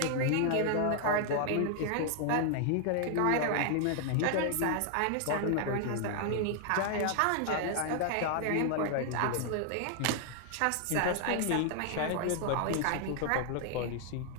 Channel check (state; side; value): different; both; correlation 0.00